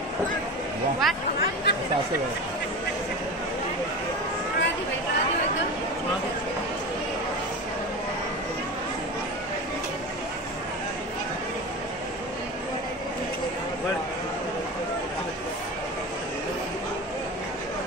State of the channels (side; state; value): both; normal; correlation 0.28